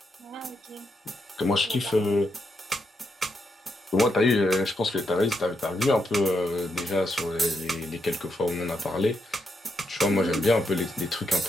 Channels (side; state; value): both; normal; correlation 0.81